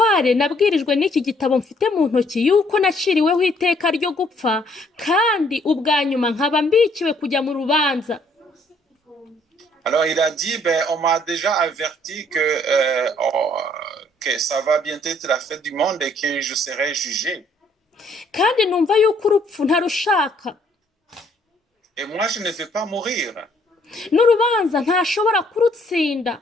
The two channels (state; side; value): normal; both; correlation 0.65